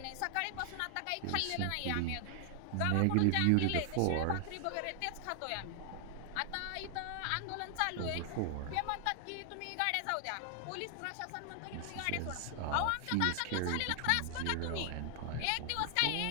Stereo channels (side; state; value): both; different; correlation 0.00